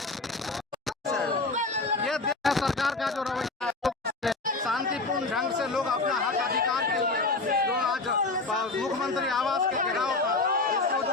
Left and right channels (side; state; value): right; quieter; 3.4 dB